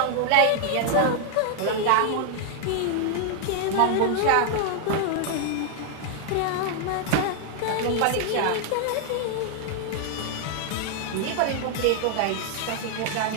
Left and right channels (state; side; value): different; both; correlation 0.00